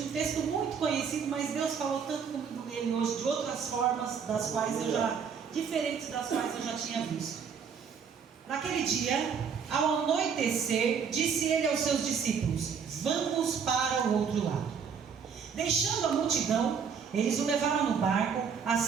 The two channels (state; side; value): quieter; left; 6.6 dB